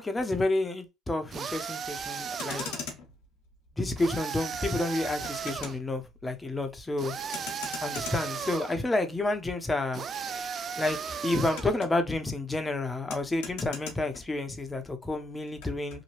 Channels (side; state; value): both; normal; correlation 0.80